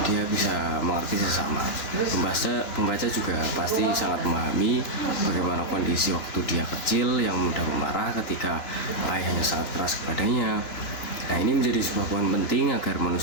dia bisa mengerti sesama. Pembaca juga pasti sangat memahami bagaimana kondisi waktu dia kecil yang mudah memarah ketika ayahnya sangat keras kepadanya, Nah, ini menjadi sebuah poin penting agar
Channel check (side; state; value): right; late; 2.9 ms